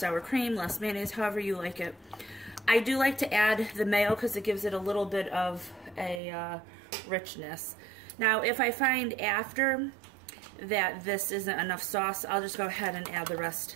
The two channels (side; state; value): left; drops out; at 6.2 s